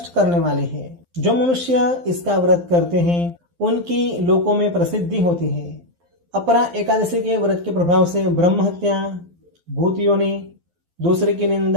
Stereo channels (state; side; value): late; left; 12 ms